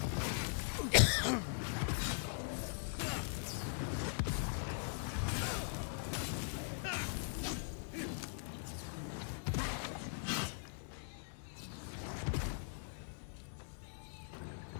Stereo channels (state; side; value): silent; right; 50 dB below the other